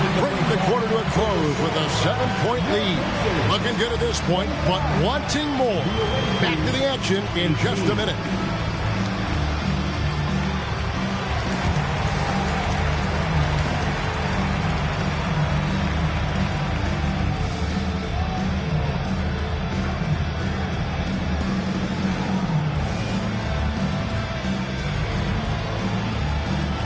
bringing the quarter to a close with a 7-point lead. Looking good at this point, but wanting more. Back to the action in just a minute.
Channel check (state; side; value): identical; both; correlation 1.00